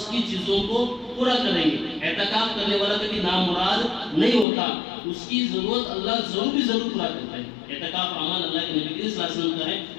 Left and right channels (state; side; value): drops out; right; at 4.5 s